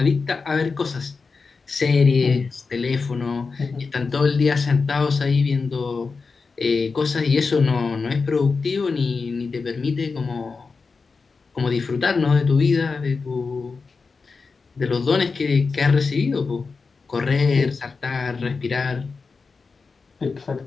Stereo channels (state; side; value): quieter; right; 4.6 dB